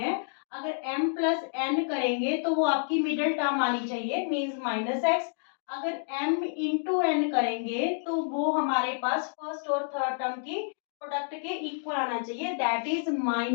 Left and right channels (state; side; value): silent; right; digital silence